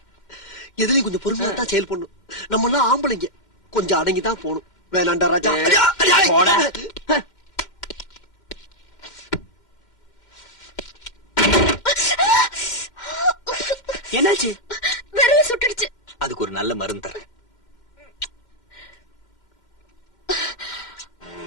எதுலயும் கொஞ்சம் பொறுமையா தான் செயல் பண்ணும். நம்ம எல்லாம் ஆம்பளைங்க, கொஞ்சம் அடங்கிதான் போகணும். வேணாண்டா ராஜா. என்னாச்சு? விரல சுட்டுடுச்சு. அதுக்கு ஒரு நல்ல மருந்து தரேன்.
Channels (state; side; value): late; right; 2.1 ms